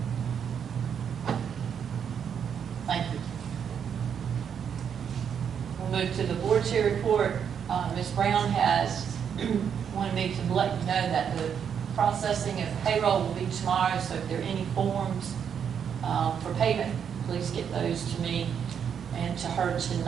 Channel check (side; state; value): left; quieter; 7.8 dB